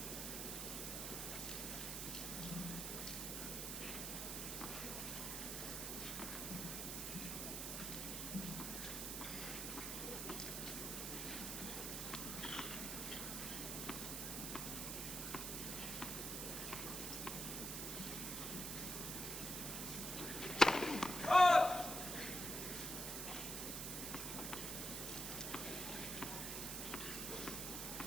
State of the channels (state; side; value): noise; right; hiss, 2 dB below the sound